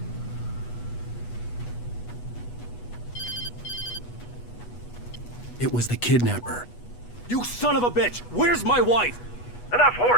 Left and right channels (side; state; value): right; late; 8.2 ms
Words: It was the kidnapper. You son of a bitch! Where's my wife? Enough